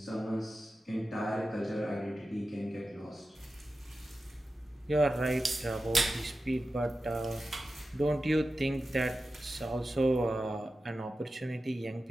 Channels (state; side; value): normal; both; correlation 0.93